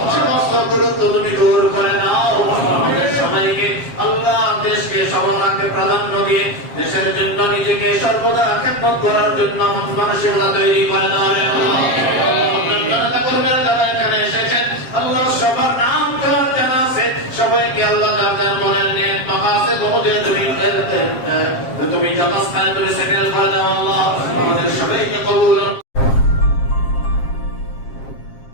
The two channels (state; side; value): late; right; 7.5 ms